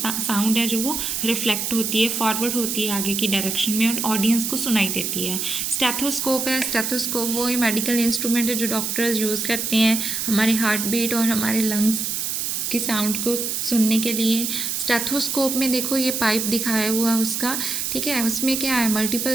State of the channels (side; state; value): right; noise; hiss, 1 dB below the sound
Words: है जो वो रिफ्लेक्ट होती है, फॉरवर्ड होती है आगे की डायरेक्शन में, और ऑडियंस को सुनाई देती है। स्टेथोस्कोप है, स्टेथोस्कोप वो ही मेडिकल इंस्ट्रूमेंट है जो डॉक्टर्स यूज़ करते हैं हमारे हार्ट बीट और हमारे लंग्स की साउंड को सुनने के लिए। स्टेथोस्कोप में देखो ये पाइप दिखाया हुआ है उसका, ठीक है, उसमें क्या है,